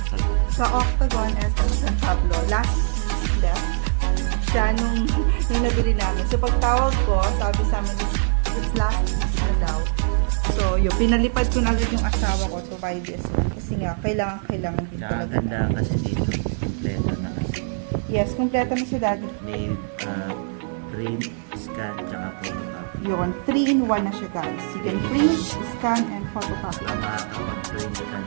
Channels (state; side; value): silent; left; digital silence